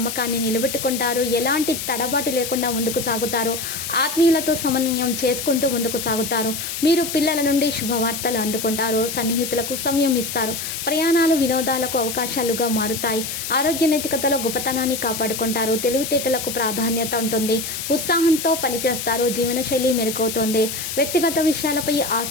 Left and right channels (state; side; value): noise; left; hiss, 5 dB below the sound